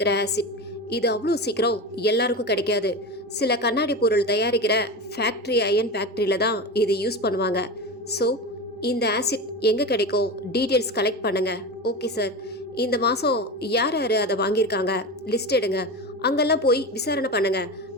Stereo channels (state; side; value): normal; both; correlation 0.24